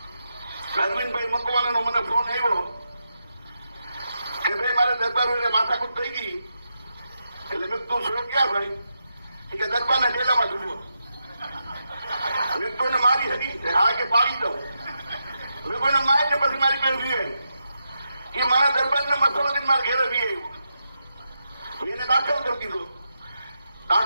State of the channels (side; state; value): both; inverted; correlation -0.85